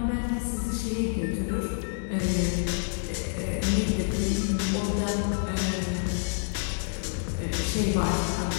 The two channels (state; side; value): silent; right; digital silence